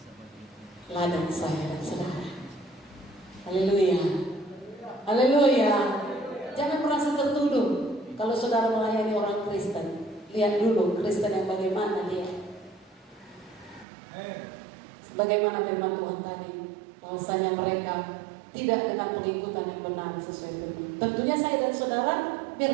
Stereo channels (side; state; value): left; drops out; at 13.9 s